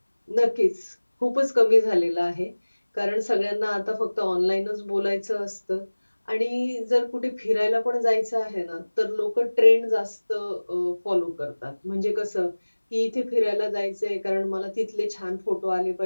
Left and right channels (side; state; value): both; inverted; correlation -1.00